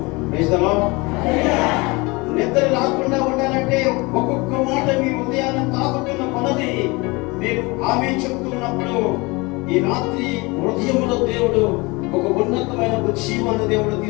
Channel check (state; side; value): quieter; right; 25.3 dB